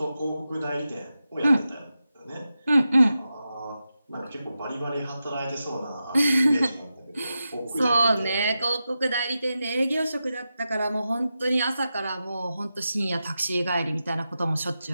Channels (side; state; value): both; inverted; correlation -0.90